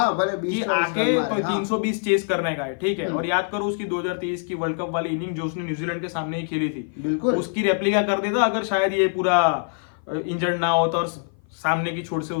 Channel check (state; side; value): silent; right; 56 dB below the other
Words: भले कि आके तो 320 चेस करने का है, ठीक है। और याद करो उसकी 2023 की वर्ल्ड कप वाली इनिंग जो उसने न्यूजीलैंड के सामने ही खेली थी, बिल्कुल उसकी रेप्लिका कर देता अगर शायद ये पूरा इंजर्ड ना होता और सामने की छोर से